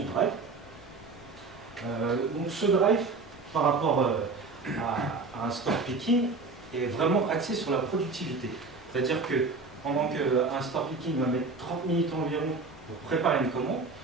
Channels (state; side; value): quieter; left; 4.0 dB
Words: drive. Donc ce drive, par rapport à un store picking, est vraiment axé sur la productivité. C'est-à-dire que pendant qu'un store picking va mettre 30 minutes environ pour préparer une commande,